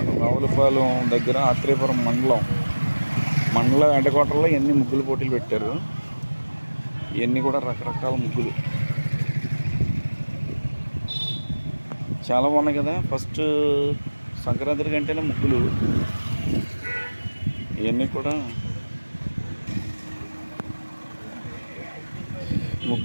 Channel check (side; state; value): both; inverted; correlation -1.00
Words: రావులపాలెం దగ్గర ఆత్రేయపురం మండల వెంటకోటలో ఇవన్నీ ముగ్గులు పోటీలు పెట్టారు. ఇవన్నీ కూడా రకరకాల ముగ్గులు చాలా బాగున్నాయి కదా. ఫస్ట్ సంక్రాంతి కంటేనే ముగ్గులు ఇవన్నీ కూడా